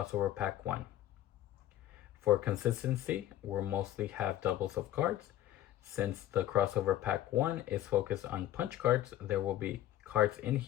pack 1. For consistency, we'll mostly have doubles of cards. Since the crossover pack 1 is focused on punch cards, there will be cards in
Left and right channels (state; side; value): quieter; right; 13.1 dB